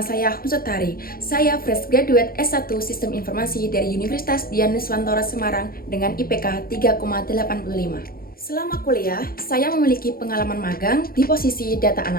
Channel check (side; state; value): right; late; 0.43 ms